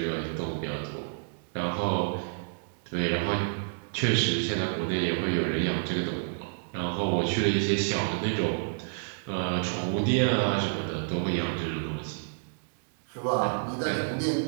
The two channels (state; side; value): silent; left; digital silence